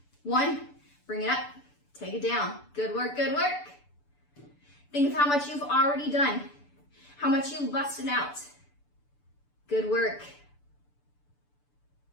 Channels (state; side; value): late; right; 6.9 ms